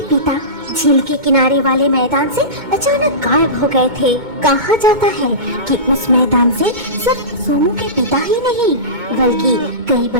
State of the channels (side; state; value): left; late; 2.2 ms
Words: पिता झील के किनारे वाले मैदान से अचानक गायब हो गए थे। कहा जाता है कि उस मैदान से सिर्फ सोमू के पिता ही नहीं बल्कि कई